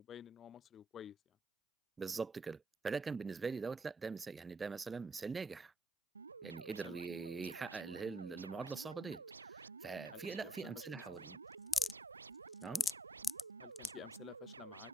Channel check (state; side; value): normal; both; correlation 0.78